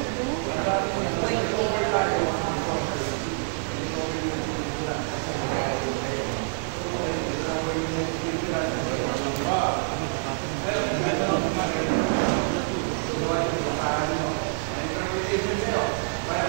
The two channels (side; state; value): left; silent; 61 dB below the other